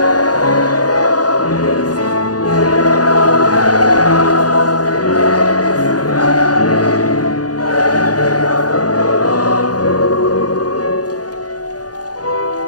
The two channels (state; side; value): late; right; 0.68 ms